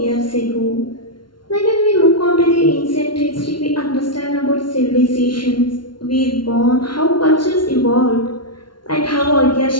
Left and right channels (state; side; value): late; right; 0.72 ms